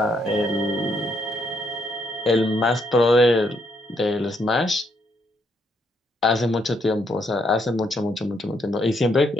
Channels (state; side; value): normal; both; correlation 0.74